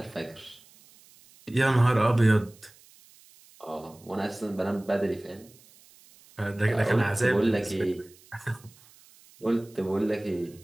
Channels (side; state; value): right; noise; hiss, 26 dB below the sound